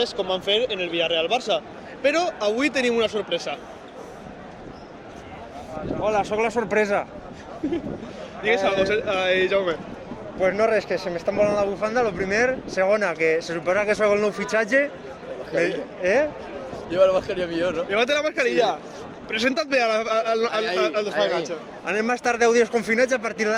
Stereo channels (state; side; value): identical; both; correlation 1.00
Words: com van fer en el Villarreal-Barça. Però avui tenim una sorpresa. Hola, sóc la sorpresa. Digues algo, Jaume. Pues no res, que se m'està volant la bufanda, lo primer. Segona, que se suposa que soc el nou fitxatge. Lleva la mascarilla millor, no? Llévate la mascarilla. Presenta't bé al desfaenatge. Anem a estar 10 dies confinats a partir